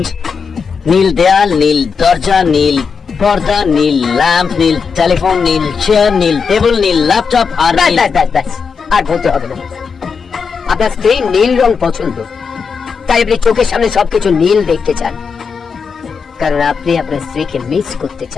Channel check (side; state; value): right; quieter; 5.7 dB